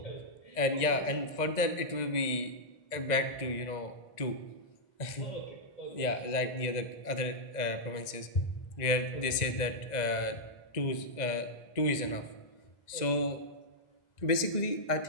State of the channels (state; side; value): late; right; 1.9 ms